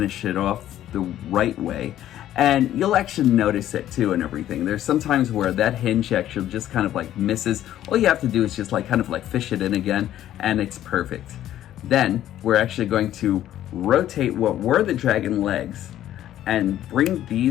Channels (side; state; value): right; quieter; 12.4 dB